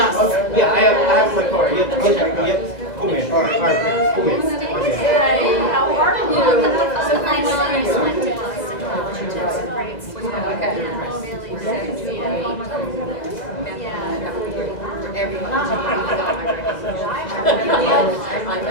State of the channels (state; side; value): late; right; 2.0 ms